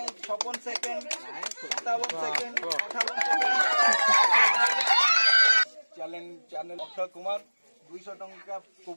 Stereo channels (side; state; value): both; inverted; correlation -1.00